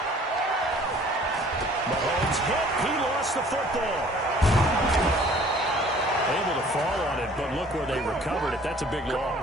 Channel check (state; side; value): normal; both; correlation 0.53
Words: Mahomes hit. He lost the football. Able to fall on it, but look where they recovered it. That's a big